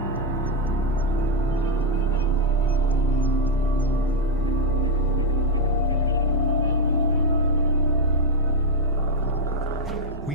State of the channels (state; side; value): normal; both; correlation 0.02